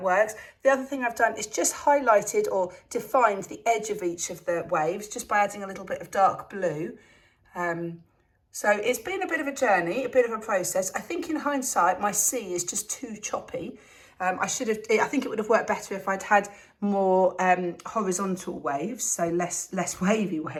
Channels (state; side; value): identical; both; correlation 1.00